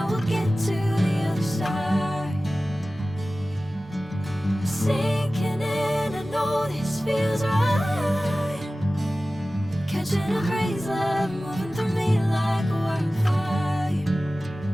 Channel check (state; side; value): normal; both; correlation 0.96